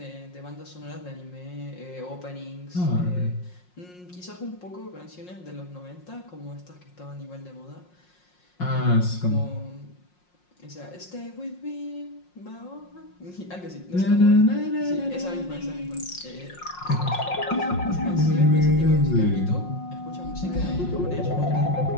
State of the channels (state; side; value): late; right; 5.6 ms